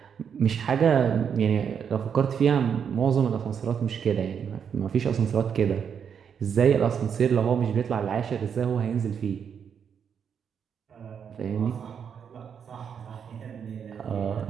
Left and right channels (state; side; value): quieter; left; 7.4 dB